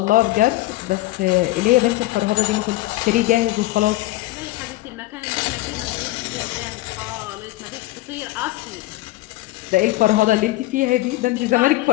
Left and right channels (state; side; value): quieter; right; 17.9 dB